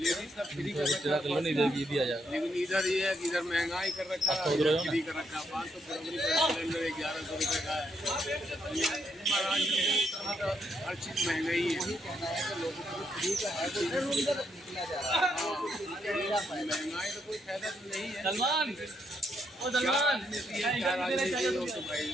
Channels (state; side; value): normal; both; correlation 0.77